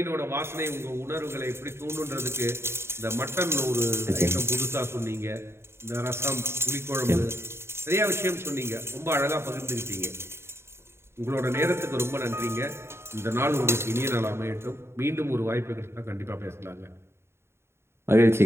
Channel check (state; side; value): late; left; 0.12 ms